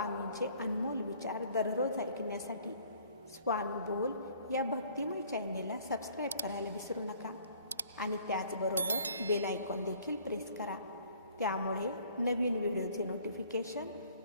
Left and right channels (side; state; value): both; inverted; correlation -0.56